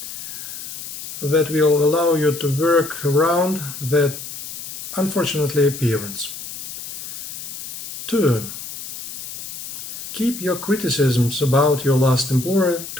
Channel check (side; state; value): left; noise; hiss, 9 dB below the sound